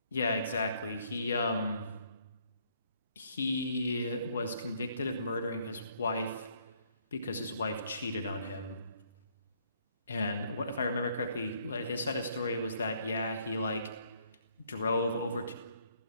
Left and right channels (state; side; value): inverted; both; correlation -0.67